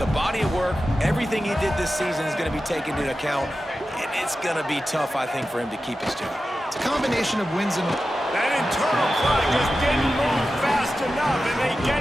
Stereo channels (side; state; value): both; normal; correlation 0.93